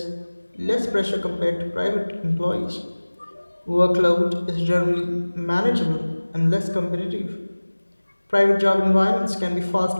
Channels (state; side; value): inverted; both; correlation -1.00